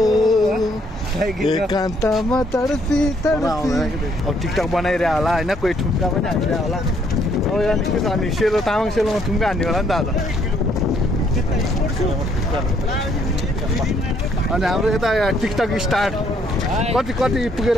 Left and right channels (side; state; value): both; normal; correlation 0.68